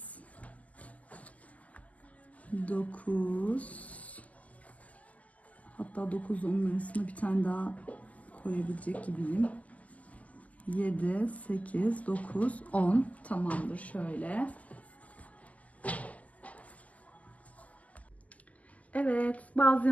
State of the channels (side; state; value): right; late; 0.074 ms